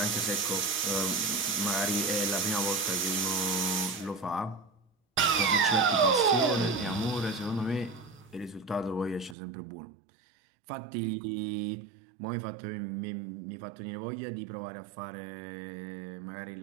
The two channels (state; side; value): drops out; left; at 9.3 s